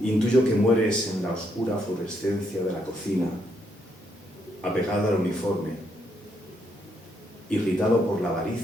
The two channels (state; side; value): normal; both; correlation 0.76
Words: Intuyo que mueres en la oscura fluorescencia de la cocina, apegado al uniforme, irritado por la